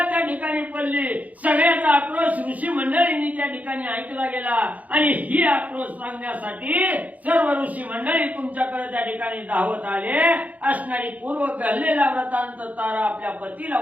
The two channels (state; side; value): late; left; 0.075 ms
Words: त्या ठिकाणी पडली. सगळ्याचा आक्रोश ऋषी मंडळींनी त्या ठिकाणी ऐकला गेला आणि ही आक्रोश सांगण्यासाठी सर्व ऋषी मंडळी तुमच्याकडे त्या ठिकाणी धावत आले. असणारी पूर्व घडलेला व्रतांत तारा आपल्या पतीला